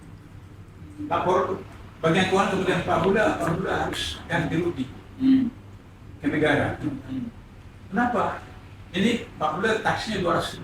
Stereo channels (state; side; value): identical; both; correlation 1.00